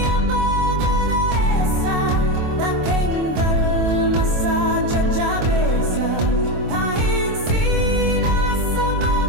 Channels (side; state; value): left; late; 24 ms